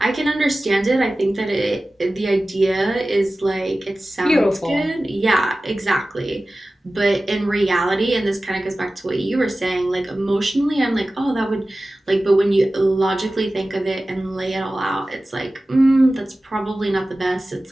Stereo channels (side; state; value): both; normal; correlation 0.96